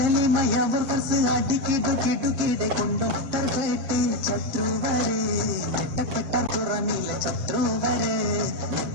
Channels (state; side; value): late; left; 7.5 ms